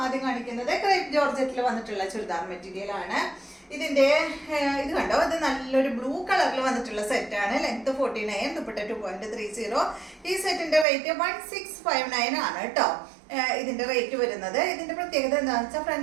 ആദ്യം കാണിക്കുന്നത് ക്രേപ്പ് ജോർജറ്റിൽ വന്നിട്ടുള്ള ചുരിദാർ മെറ്റീരിയൽ ആണ്. ഇതിന്റെ ഇത് കണ്ടോ, ഇത് നല്ലൊരു ബ്ലൂ കളറിൽ വന്നിട്ടുള്ള സെറ്റാണ്. ലെങ്ത് 49, ദുപ്പട്ട 2.30. ഈ സെറ്റിന്റെ റേറ്റ് 1659 ആണ് കേട്ടോ. ഇതിന്റെ റേറ്റ് വരുന്നത്. ഇതിന്റെ പ്രത്യേകത എന്താണെന്ന് വെച്ചാൽ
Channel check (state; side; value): drops out; left; at 10.9 s